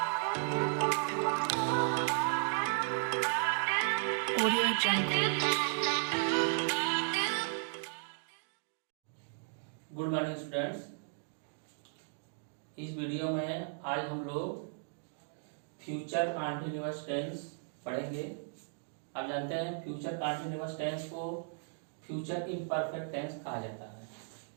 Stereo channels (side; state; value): left; silent; digital silence